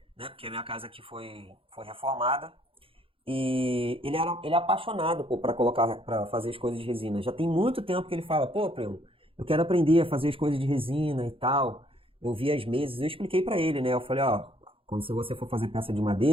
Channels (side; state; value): left; late; 0.26 ms